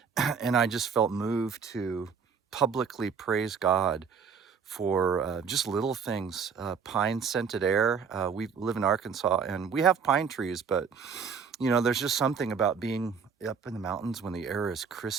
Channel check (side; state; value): left; quieter; 6.2 dB